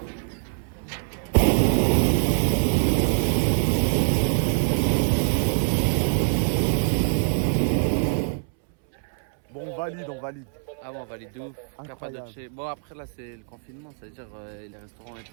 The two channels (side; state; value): left; silent; 62 dB below the other